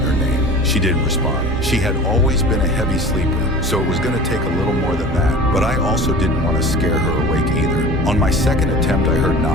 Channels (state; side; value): normal; both; correlation 0.39